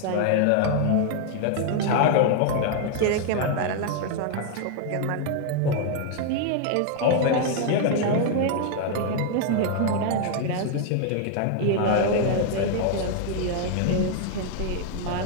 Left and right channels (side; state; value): both; different; correlation 0.00